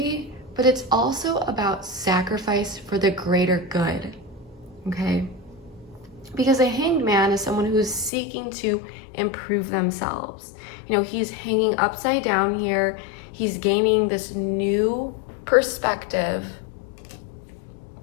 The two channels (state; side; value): drops out; right; at 8.1 s